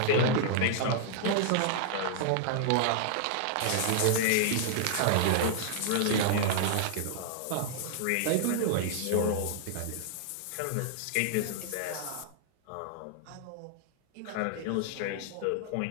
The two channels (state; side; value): different; both; correlation 0.00